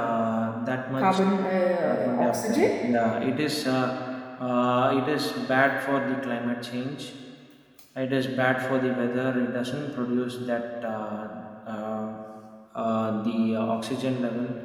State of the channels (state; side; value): identical; both; correlation 1.00